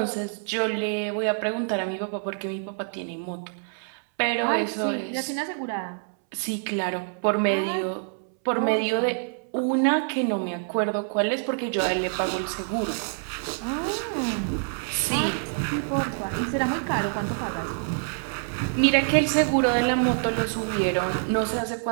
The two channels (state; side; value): silent; left; 61 dB below the other